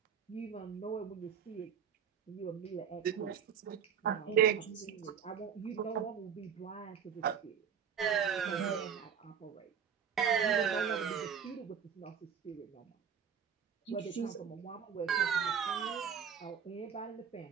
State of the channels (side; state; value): left; quieter; 7.5 dB